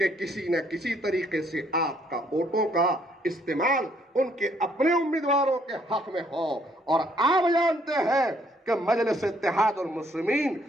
किसी न किसी तरीके से आपका वोटों का इस्तेमाल उनके अपने उम्मीदवारों के हक में हो। और आप जानते हैं कि मजलिस इत्तेहादुल मुस्लिमीन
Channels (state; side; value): normal; both; correlation 0.67